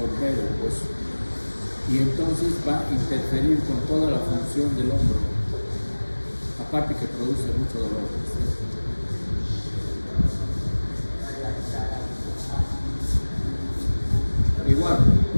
el hueso. Y entonces va a interferir con toda la función del hombro, aparte que produce mucho dolor. Igual,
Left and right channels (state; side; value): inverted; both; correlation -1.00